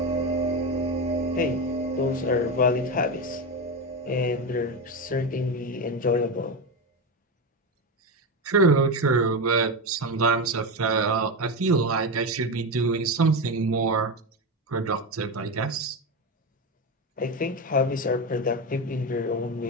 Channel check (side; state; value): both; normal; correlation 0.15